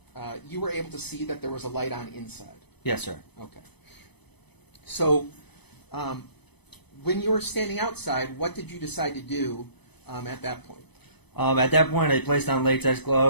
you were able to see that there was a light on inside. Yes, sir. Okay. So, when you were standing outside, what did you decide to do at that point? At that point, I placed on latex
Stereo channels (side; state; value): right; late; 0.98 ms